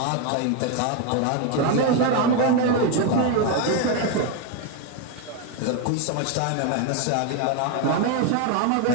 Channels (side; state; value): both; different; correlation 0.01